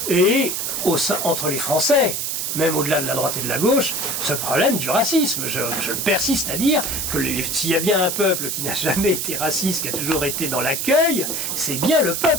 et entre les Français, même au-delà de la droite et de la gauche, ce problème du racisme. Je persiste à dire que s'il y a bien un peuple qui n'a jamais été raciste, qui a toujours été dans l'accueil, c'est bien le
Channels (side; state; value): right; noise; hiss, 2 dB below the sound